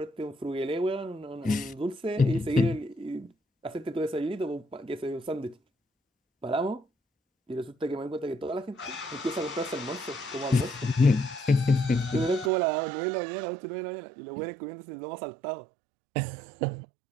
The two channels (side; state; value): left; drops out; at 12.5 s